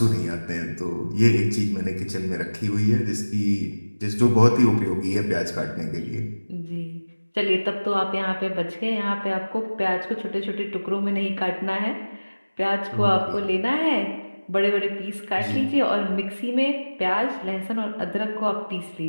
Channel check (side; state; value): both; inverted; correlation -1.00